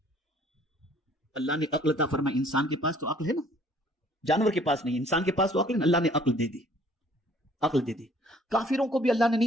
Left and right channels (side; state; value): both; normal; correlation 0.57